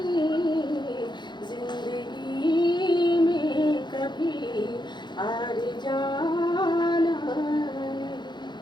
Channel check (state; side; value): late; right; 0.21 ms